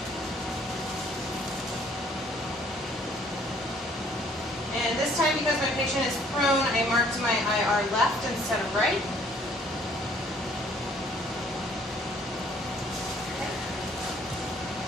And this time, because my patient is prone, I marked my IR left instead of right. Okay.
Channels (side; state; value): both; normal; correlation 0.61